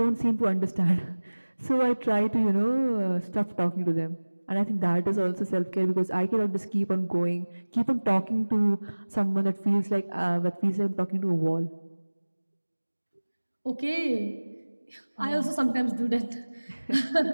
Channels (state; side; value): inverted; both; correlation -1.00